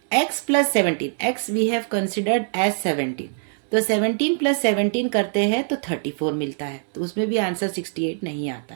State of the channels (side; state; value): left; silent; 63 dB below the other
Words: x plus 17, x we have considered as 17, तो 17 प्लस 17 करते हैं तो 34 मिलता है, तो उसमें भी आंसर 68 नहीं आता